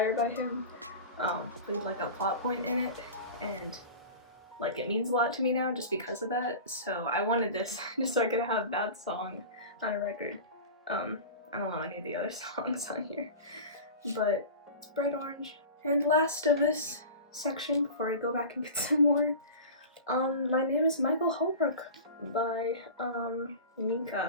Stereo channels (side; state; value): both; inverted; correlation -0.34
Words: by him with like a plot point in it, and like it means a lot to me now just because of that. So I wanted this just so I could have that song on a record. I don't know any of the other songs on here, but it's bright orange. And last of this section before I go back and get some more, My Name is Michael Holbrook by